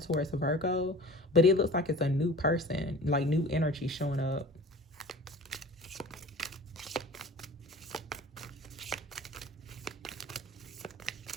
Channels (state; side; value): normal; both; correlation 0.41